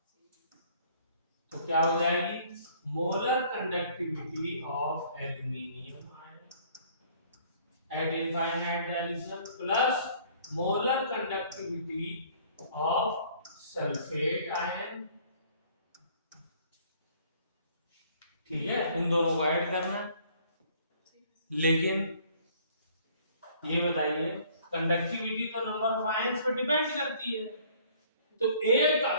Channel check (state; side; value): inverted; both; correlation -0.57